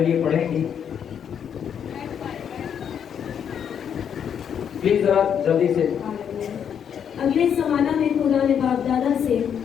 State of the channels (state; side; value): quieter; right; 8.2 dB